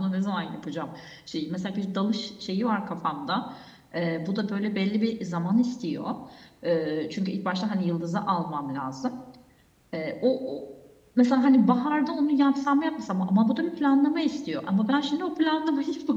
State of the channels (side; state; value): both; identical; correlation 1.00